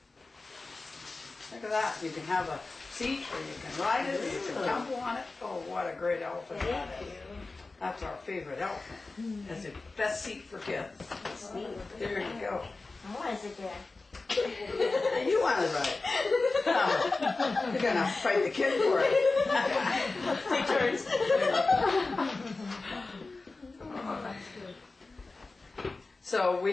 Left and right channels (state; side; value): quieter; right; 3.6 dB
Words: Look at that. You can have a seat or you can ride it or you can tumble on it. Oh, what a great elephant that is. That's our favorite elephant. That's the best seat for kids. Sweet. There you go. I want to sit there. You want to ride. You're going to fight the kid for it. Take turns. So